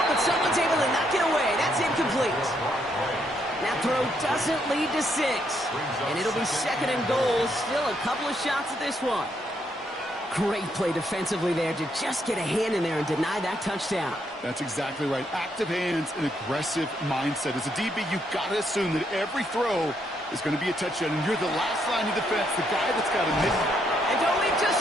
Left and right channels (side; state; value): both; normal; correlation 0.75